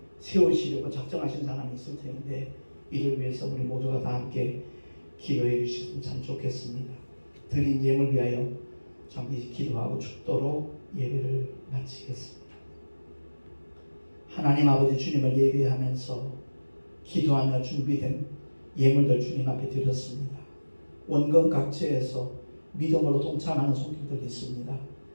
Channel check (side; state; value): both; inverted; correlation -1.00